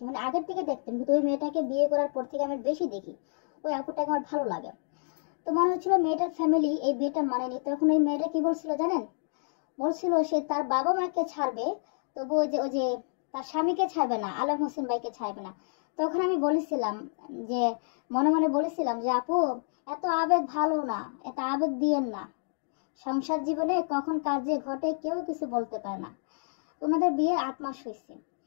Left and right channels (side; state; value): right; silent; digital silence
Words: মানে আগের থেকে দেখতাম, কিন্তু ওই মেয়েটাকে বিয়ে করার পর থেকে আমি বেশি দেখি। ওই আপুটাকে আমার ভালো লাগে। তো মনে হচ্ছিল মেয়েটার ফ্যামিলি এই বিয়েটা মানেনি। তখন ওই মেয়েটা কি বলছিল জানেন? বলছিল সে তার বাবা মাকে ছাড়বে, তবু ওই যে তার স্বামীকে ছাড়বে না, আলম হোসেন ভাইকে ছাড়বে না। তখন আমি বলেছিলাম যে, মনে মনে বলেছিলাম যে, আপু, এত আবেগ ভালো না, এত আবেগ দিয়েন না। সংসার জীবনে কখন কার যে ঘটে কেউ কিছু বলতে পারে না। ওনাদের বিয়ে 8 মাস হয়েছে।